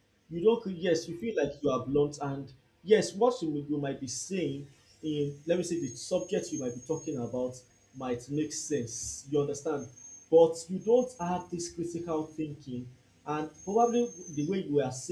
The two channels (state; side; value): identical; both; correlation 1.00